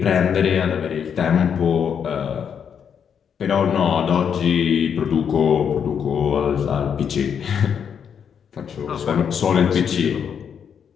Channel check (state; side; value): quieter; right; 7.6 dB